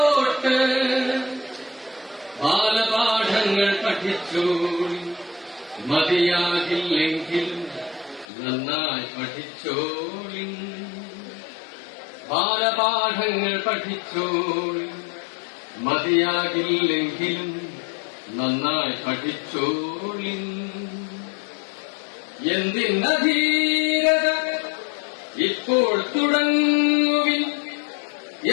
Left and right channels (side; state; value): right; drops out; at 8.2 s